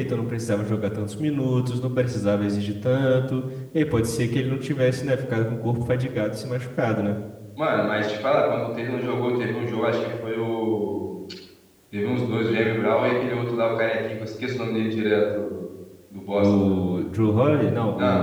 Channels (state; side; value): identical; both; correlation 1.00